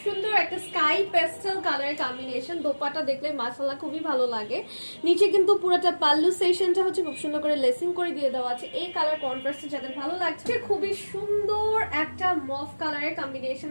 সুন্দর একটা স্কাই পেস্টেল কালারের কম্বিনেশন। দোপাট্টা দেখলে মাশাআল্লাহ খুবই ভালো লাগে। নিচে কিন্তু পুরোটা পাল্লু সেকশনটা হচ্ছে খুব সুন্দর করে লেসিং করে দিয়ে দেওয়া আছে। এই কালার কন্ট্রাস্টে যাদের ভালো লাগছে, খুবই সুন্দর একটা মফ কালারের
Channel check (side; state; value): both; inverted; correlation -1.00